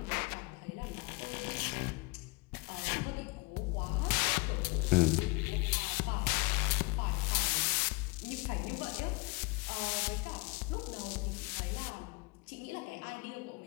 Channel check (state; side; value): quieter; right; 25.4 dB